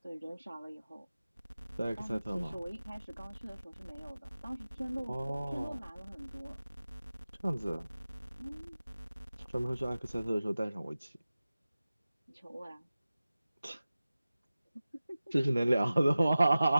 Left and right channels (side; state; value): both; inverted; correlation -0.96